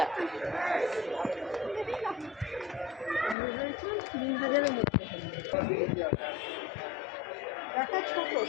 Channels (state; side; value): drops out; right; at 3.4 s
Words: 3000-এর মধ্যে দেখা ছোট